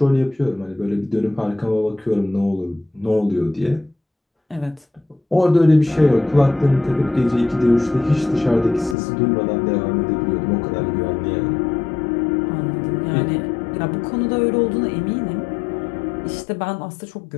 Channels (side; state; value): right; drops out; at 9.0 s